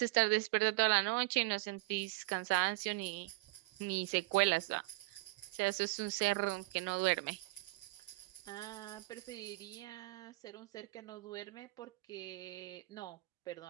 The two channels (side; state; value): left; quieter; 23.6 dB